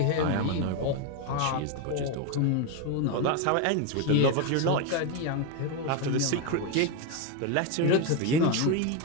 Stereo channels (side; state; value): both; different; correlation 0.02